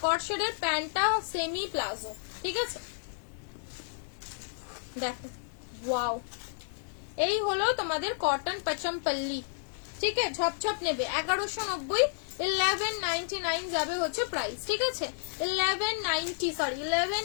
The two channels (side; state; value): right; silent; digital silence